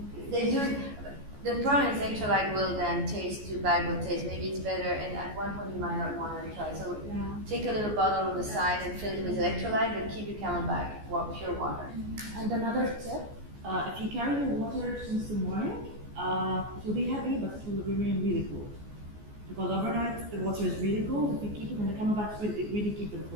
They do. The problem is electrolyte will then taste too bad. Will taste. Maybe it's better, and at one point you might not want to try. So take a little bottle on the side and fill it with electrolyte, but keep your camelback pure water. And another tip: if you carry your water since the morning, it will be heavy, but it will remain really cool. Because overnight the water is really cold. If you keep it in the camelbacks, it really keep them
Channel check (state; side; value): late; left; 14 ms